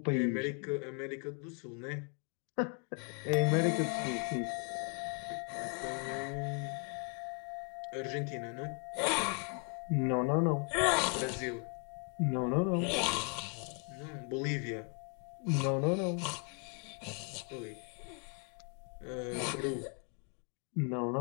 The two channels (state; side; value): quieter; right; 39.5 dB